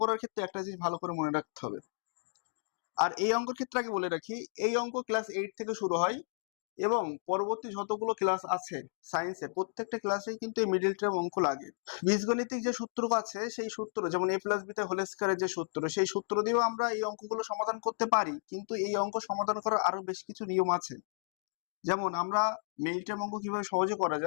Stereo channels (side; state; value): right; silent; digital silence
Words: করার ক্ষেত্রে একটা জিনিস ভালো করে মনে রাখতে হবে। আর এই অঙ্কের ক্ষেত্রে আগে বলে রাখি, এই অঙ্ক ক্লাস 8 থেকে শুরু হয় এবং পরবর্তী যতগুলো ক্লাস আছে সায়েন্সে প্রত্যেকটা ক্লাসেই কিন্তু এই মিডিল টার্ম অঙ্ক লাগে। বীজগণিতিক যে সূত্র আছে সেই সূত্র, যেমন a প্লাস বিতে হোল স্কয়ারের যে সূত্র, সেই সূত্র দিয়েও আমরা এই অঙ্কগুলো সমাধান করতে পারি, কিন্তু এই অঙ্ক সমাধান করার আরো বেশ কিছু নিয়ম আছে। যেমন আমরা মিডিল টার্ম অঙ্ক কিভাবে সহজে করা